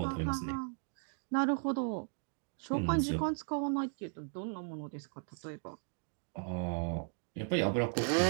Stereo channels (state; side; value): silent; left; 54 dB below the other